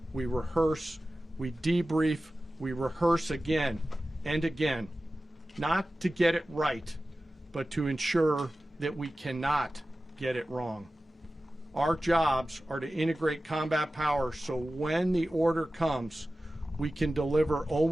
we rehearse, we debrief, we rehearse again and again, not to get it right, but to ensure that we cannot get it wrong. Our jobs are to integrate combat power so when the order comes, we can deliver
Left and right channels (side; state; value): both; normal; correlation 0.95